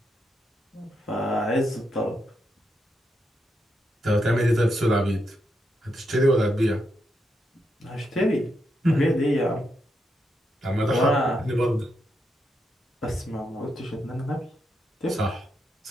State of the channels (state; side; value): normal; both; correlation 0.82